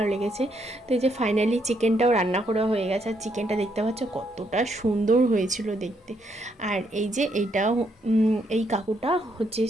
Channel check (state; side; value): normal; both; correlation 0.74